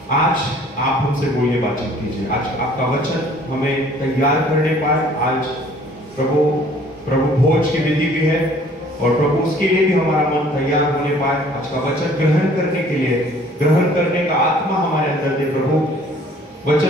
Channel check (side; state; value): both; normal; correlation 0.55